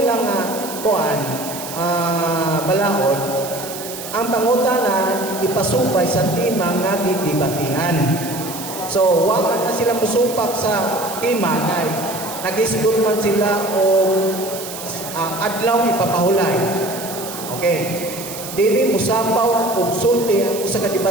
kuan, balaod, ang pangutana ipasupay sa timang nga gidibatihan. So, wag na sila musupak sa timang ay nag-isgot man sila o adlaw ipapahulay. Okay. Dili musapaw og sulti ang usa ka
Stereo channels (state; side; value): noise; right; hiss, 10 dB below the sound